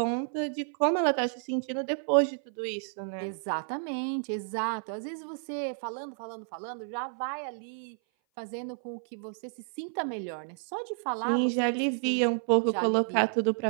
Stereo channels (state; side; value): silent; left; 56 dB below the other